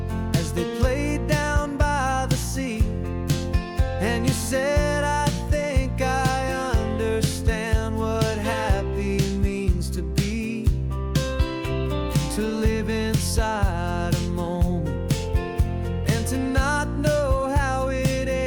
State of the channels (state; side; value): identical; both; correlation 1.00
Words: as they played down by the sea, and you said, I think I understand what happy means to be, to live inside a moment and to not know how it